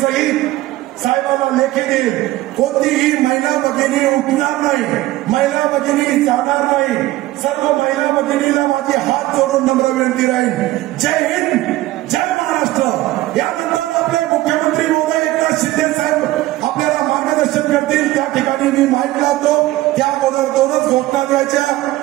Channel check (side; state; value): left; quieter; 16.9 dB